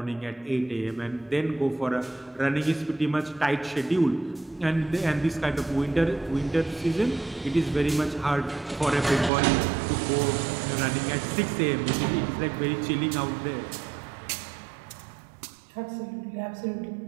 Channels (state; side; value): drops out; left; at 9.3 s